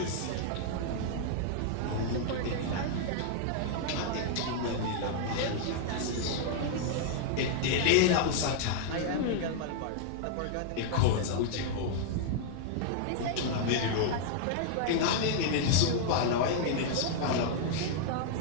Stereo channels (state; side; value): different; both; correlation -0.01